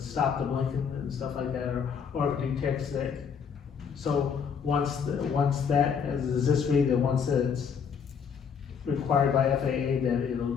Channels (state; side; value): quieter; right; 6.7 dB